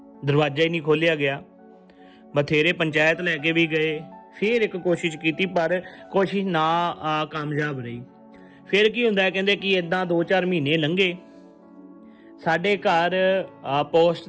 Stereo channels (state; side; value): identical; both; correlation 1.00